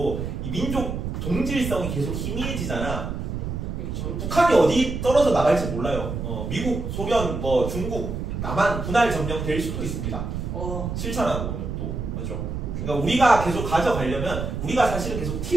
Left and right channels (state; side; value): noise; right; rumble, 4 dB below the sound